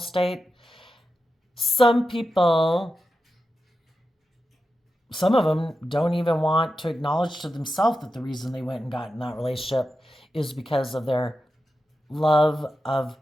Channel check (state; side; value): normal; both; correlation 0.90